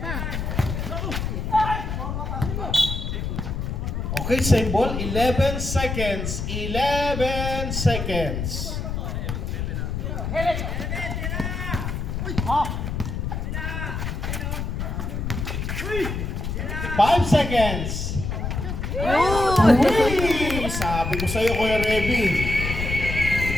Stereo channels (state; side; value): noise; left; rumble, 3 dB below the sound